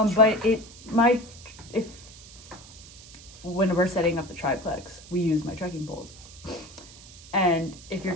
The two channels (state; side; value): noise; right; hiss, 19 dB below the sound